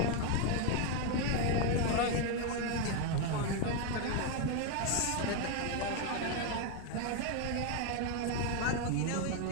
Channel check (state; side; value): different; both; correlation 0.01